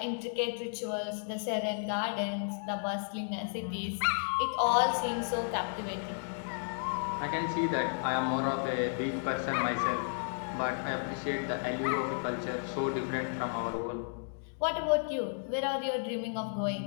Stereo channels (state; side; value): silent; right; digital silence